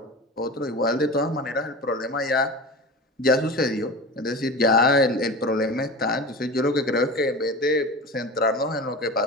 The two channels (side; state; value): both; normal; correlation 0.31